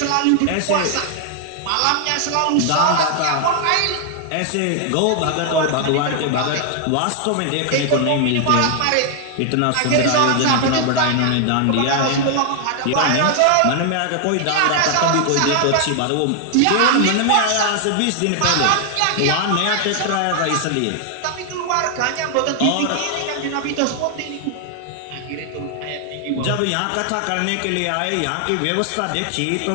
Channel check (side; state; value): both; different; correlation 0.00